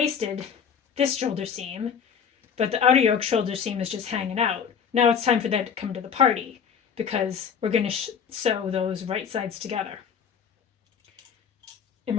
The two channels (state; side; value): quieter; right; 7.1 dB